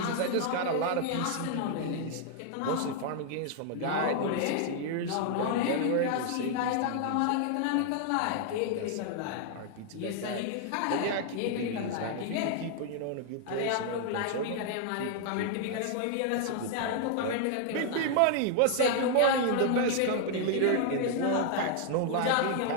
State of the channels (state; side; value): different; both; correlation 0.00